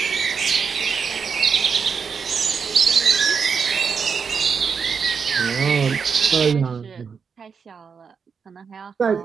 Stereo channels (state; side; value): quieter; left; 6.0 dB